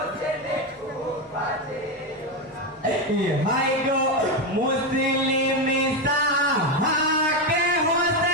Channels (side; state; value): both; normal; correlation 0.10